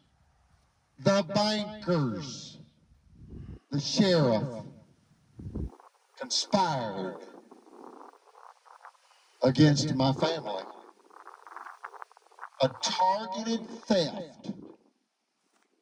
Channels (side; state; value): both; identical; correlation 1.00